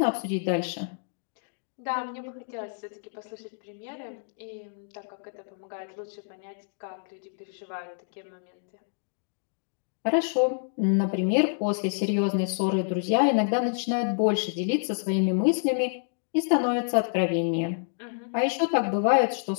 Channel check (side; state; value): right; silent; digital silence